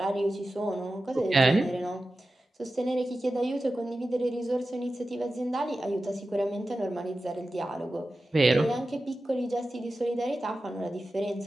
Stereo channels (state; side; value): normal; both; correlation 0.94